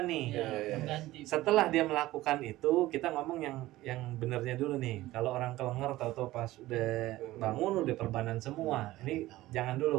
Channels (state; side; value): quieter; left; 16.9 dB